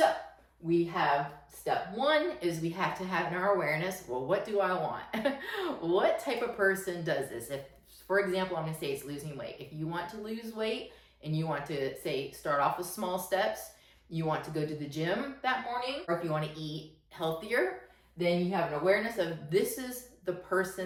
we have step one is we have to have in our awareness, well, what do I want? What type of person does this? If, for example, I'm going to say it's losing weight. If you want to lose weight and you want to, say, start off with small steps, you want to go to the gym that morning, or if you want to eat healthier, then you have an awareness of this is the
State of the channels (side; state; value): both; identical; correlation 1.00